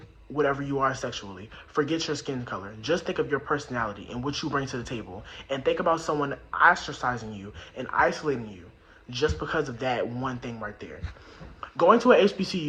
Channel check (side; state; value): both; identical; correlation 1.00